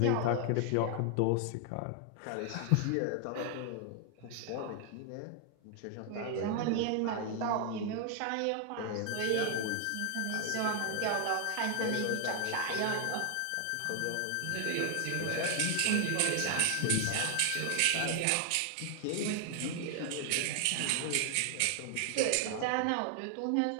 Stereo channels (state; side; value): different; both; correlation 0.00